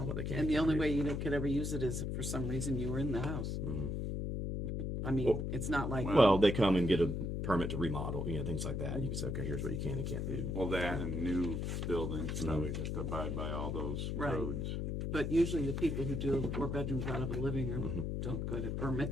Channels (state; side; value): noise; left; hum, 1 dB below the sound